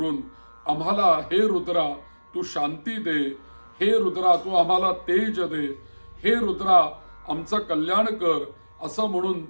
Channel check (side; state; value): both; inverted; correlation -1.00